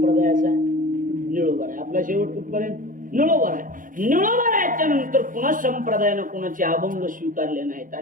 निळोबर आहे. आपला शेवट कुठपर्यंत निळोबर आहे. निळोबरायच्या नंतर पुन्हा संप्रदायानं कोणाचे अभंग स्वीकारले नाहीत,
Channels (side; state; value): left; late; 0.39 ms